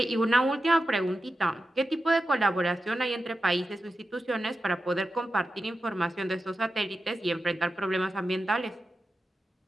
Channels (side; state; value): both; normal; correlation 0.91